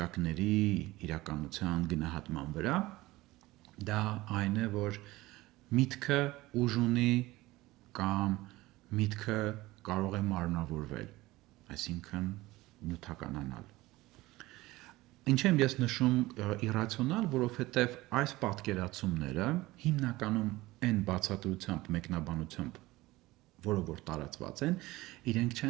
իրականության գնահատման վրա, դա այն է, որ միտքը ուժ ունի կամ միտքը կարող է մարմնավորվել, այսինքն նյութականանալ։ Ինչ եմ ես նշում իրացիոնալ, որովհետև այս պատկերացումները հիմնականում այն բացատրությամբ, մեկնաբանությամբ, որը որ տարածված են, իրենք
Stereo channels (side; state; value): left; quieter; 19.0 dB